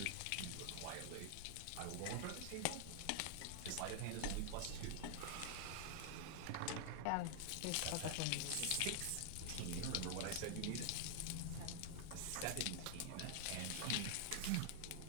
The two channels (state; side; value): different; both; correlation 0.00